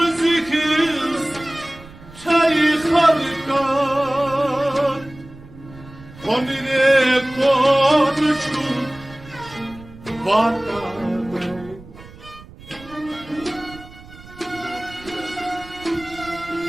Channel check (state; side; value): noise; right; rumble, 19 dB below the sound